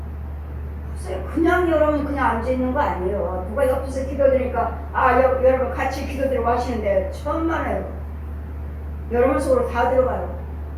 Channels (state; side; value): identical; both; correlation 1.00